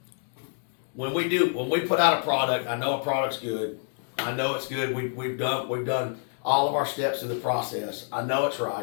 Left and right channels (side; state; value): right; silent; 60 dB below the other